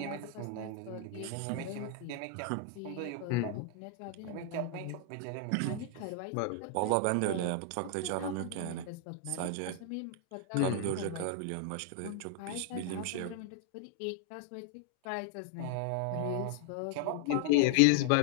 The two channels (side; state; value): both; different; correlation 0.00